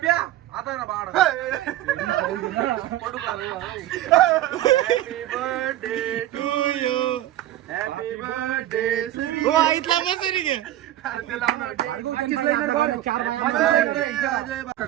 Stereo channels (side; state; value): left; quieter; 13.7 dB